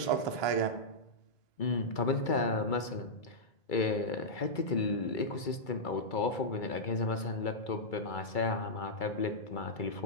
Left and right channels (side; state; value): right; late; 2.3 ms